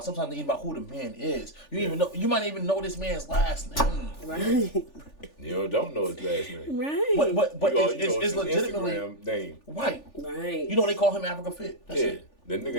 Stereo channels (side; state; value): right; late; 3.4 ms